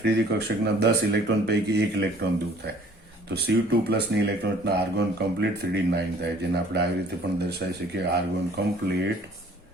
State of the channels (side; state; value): both; normal; correlation 0.54